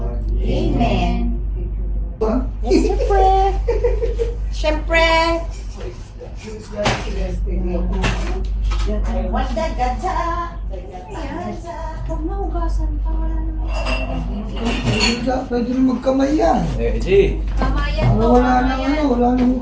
Amen. Yes, siyempre. Wanda, gadsa. Huwag na hugasan pa. Wala naman. Pwede rin magkamay yan. Di. Kamayan to. Wala na Kamayan. wala nang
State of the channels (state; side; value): identical; both; correlation 1.00